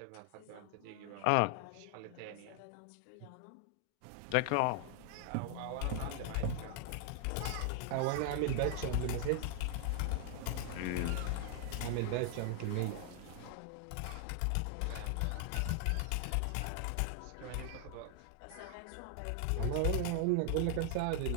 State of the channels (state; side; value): different; both; correlation 0.00